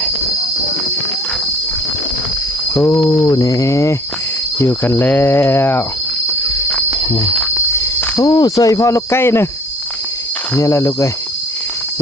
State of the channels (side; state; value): both; normal; correlation 0.56